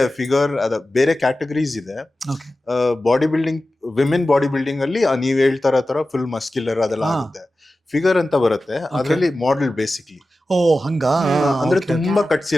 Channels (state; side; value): normal; both; correlation 0.94